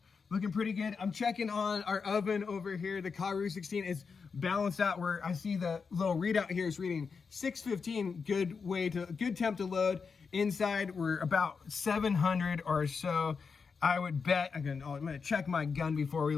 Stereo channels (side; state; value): right; quieter; 5.4 dB